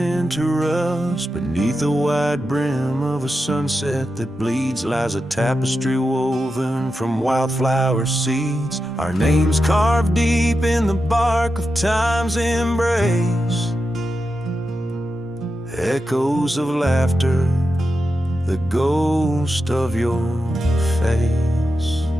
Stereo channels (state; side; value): normal; both; correlation 0.89